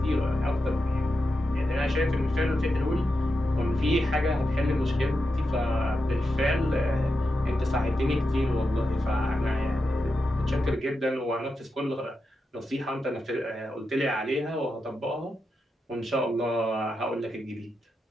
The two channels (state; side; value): normal; both; correlation 0.88